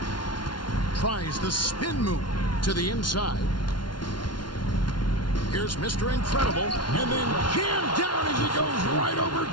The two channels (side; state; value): right; late; 0.71 ms